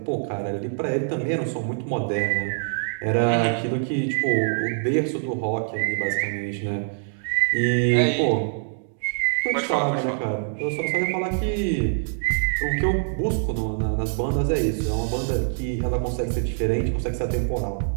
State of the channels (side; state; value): left; silent; digital silence